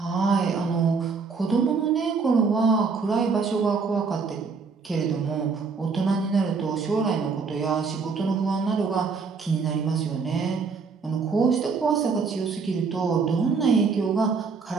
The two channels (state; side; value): quieter; left; 4.9 dB